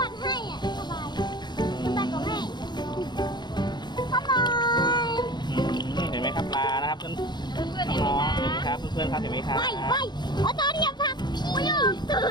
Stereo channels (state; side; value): late; right; 0.21 ms